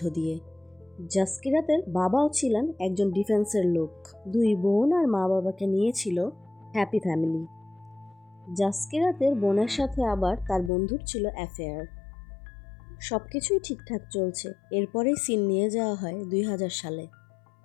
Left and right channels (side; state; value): right; drops out; at 10.7 s